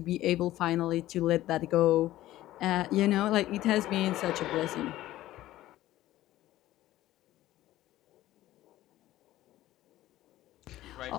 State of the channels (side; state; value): right; quieter; 15.1 dB